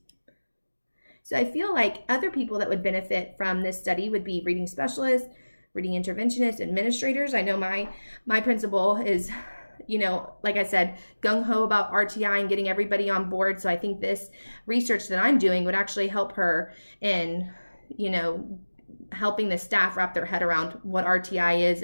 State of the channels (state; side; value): inverted; both; correlation -1.00